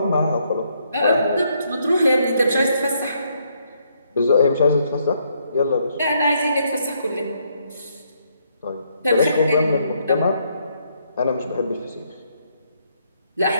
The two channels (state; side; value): inverted; both; correlation -0.73